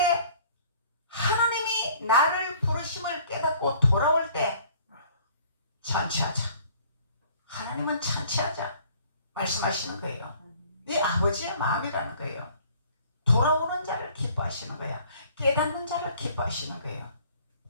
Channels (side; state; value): both; inverted; correlation -0.55